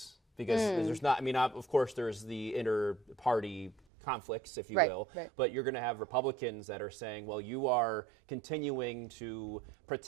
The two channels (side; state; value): left; drops out; at 3.8 s